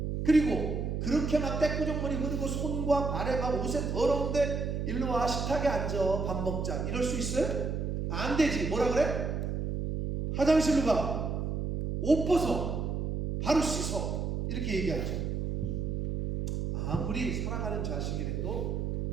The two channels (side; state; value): right; noise; hum, 1 dB below the sound